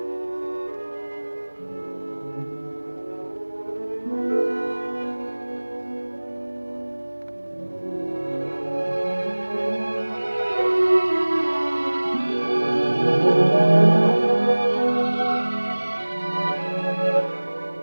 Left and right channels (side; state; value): both; inverted; correlation -1.00